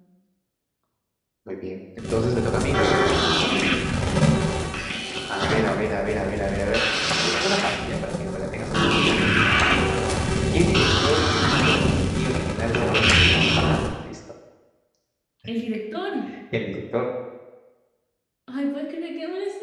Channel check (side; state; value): both; identical; correlation 1.00